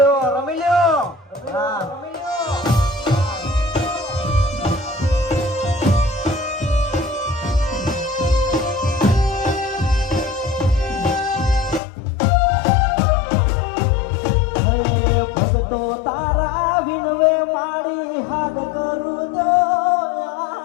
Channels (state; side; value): drops out; right; at 11.8 s